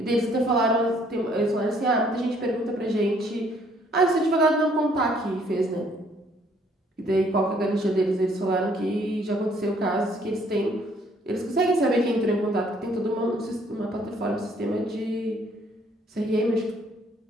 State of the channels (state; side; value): normal; both; correlation 0.63